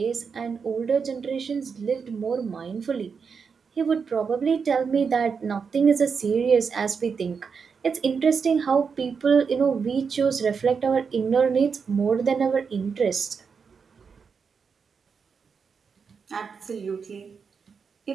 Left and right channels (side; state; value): left; quieter; 5.8 dB